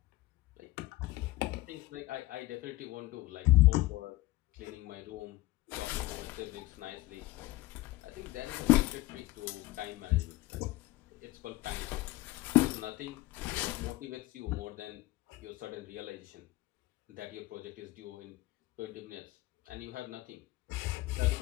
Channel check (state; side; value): quieter; right; 18.8 dB